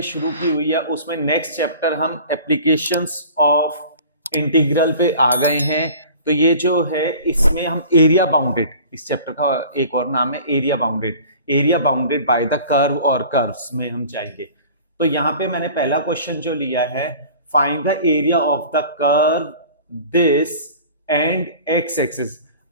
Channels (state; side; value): inverted; both; correlation -0.44